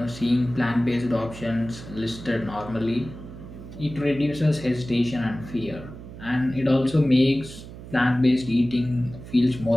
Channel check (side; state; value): right; noise; hum, 14 dB below the sound